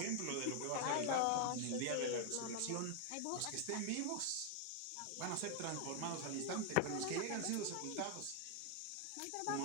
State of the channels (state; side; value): different; both; correlation 0.00